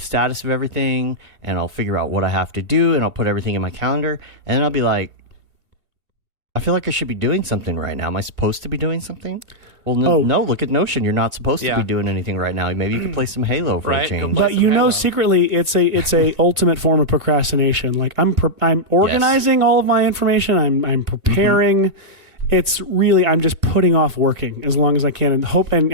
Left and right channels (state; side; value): late; left; 1.9 ms